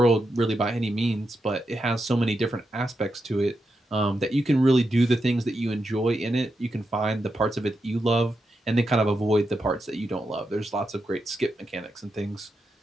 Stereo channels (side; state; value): both; normal; correlation 0.86